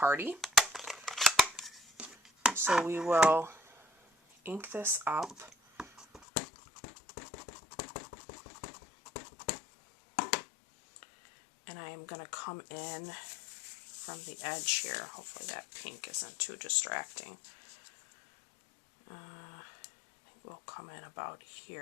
So we will ink this up. And I am going to come in from the edge here. Hopefully that pink isn't too distracting. Will come in about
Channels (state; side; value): drops out; right; at 6.2 s